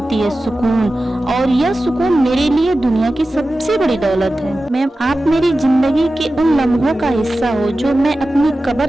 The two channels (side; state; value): both; normal; correlation 0.94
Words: है, सुकून, और यह सुकून मेरे लिए दुनिया की सबसे बड़ी दौलत है। मैम, आप मेरी जिंदगी के उन लम्हों का हिस्सा हो जो मैं अपनी